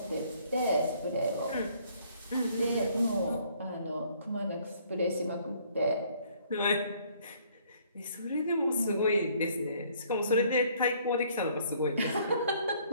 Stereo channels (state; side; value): inverted; both; correlation -0.62